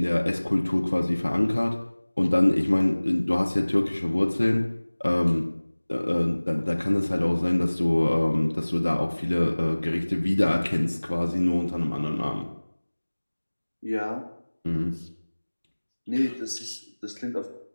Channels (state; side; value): inverted; both; correlation -1.00